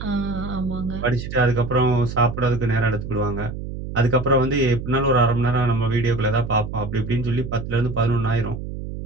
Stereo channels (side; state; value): right; noise; hum, 8 dB below the sound